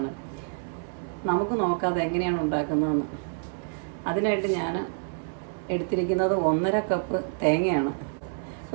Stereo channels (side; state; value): left; silent; 57 dB below the other